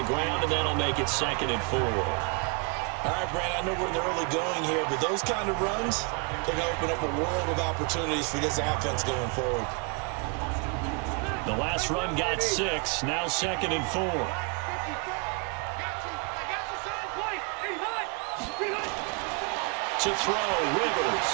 ground, and that'll make it 2nd and 4. All right, Brand, I know we're in the early going here, but those kind of runs, they're going to open up a world of opportunities for this offense going forward. The last run got 6, now 2nd and 4. To throw, Rivers.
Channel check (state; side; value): quieter; left; 33.1 dB